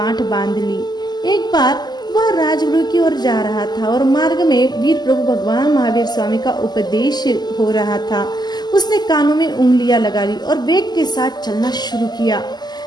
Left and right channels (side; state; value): right; late; 0.20 ms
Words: बांध ली। एक बार वह राजगृह की ओर जा रहा था और मार्ग में वीर प्रभु भगवान महावीर स्वामी का उपदेश हो रहा था। उसने कानों में उंगलियां लगा ली और वेग के साथ चलना शुरू किया।